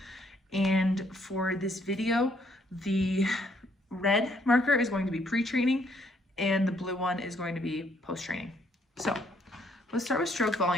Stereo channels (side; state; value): both; normal; correlation 0.69